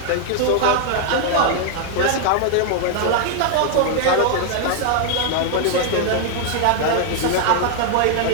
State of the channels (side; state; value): both; different; correlation 0.00